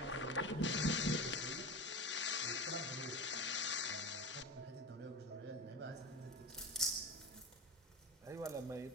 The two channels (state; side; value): normal; both; correlation 0.26